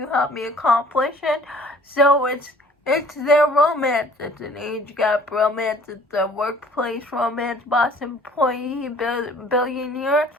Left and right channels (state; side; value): normal; both; correlation 0.53